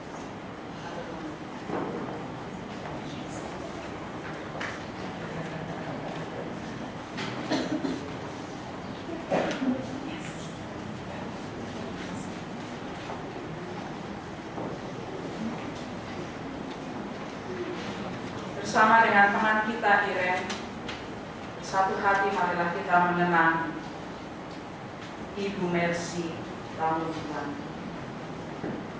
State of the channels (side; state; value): both; identical; correlation 1.00